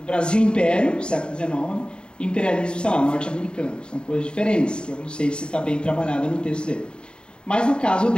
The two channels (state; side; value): late; right; 0.051 ms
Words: Brasil Império, século XIX, e imperialismo, sei lá, norte-americano. São coisas diferentes, que eu não sei se está bem trabalhada no texto dele. Mas no caso